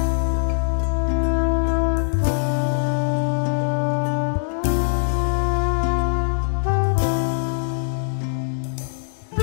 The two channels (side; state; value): right; silent; digital silence